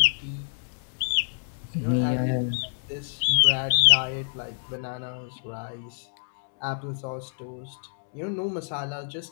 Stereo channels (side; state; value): right; silent; digital silence